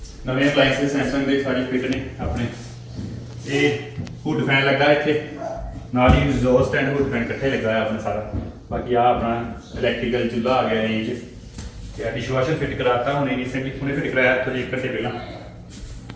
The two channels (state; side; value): identical; both; correlation 1.00